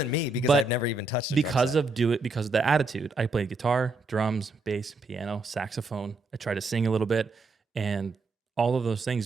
me because I've never even touched a drum set. Because of the attitude. I played guitar, drums, bass, piano, saxophone. I tried to sing a little bit, and all of those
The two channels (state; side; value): quieter; left; 3.2 dB